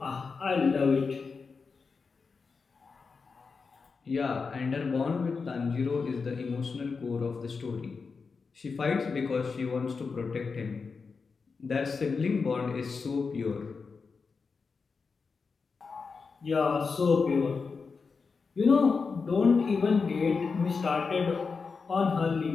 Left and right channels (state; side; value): quieter; right; 4.9 dB